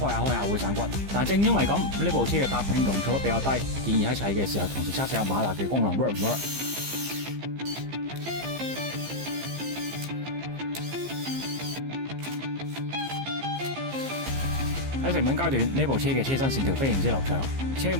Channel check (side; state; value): left; late; 15 ms